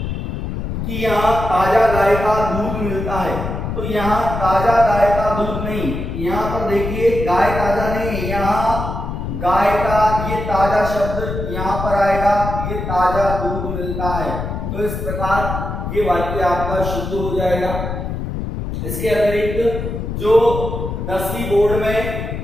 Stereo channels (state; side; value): noise; left; rumble, 4 dB below the sound